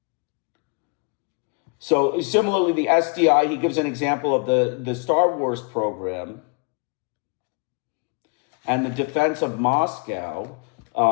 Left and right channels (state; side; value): quieter; right; 36.2 dB